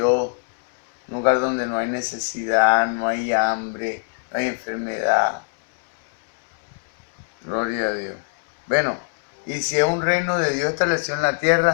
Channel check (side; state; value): right; silent; 64 dB below the other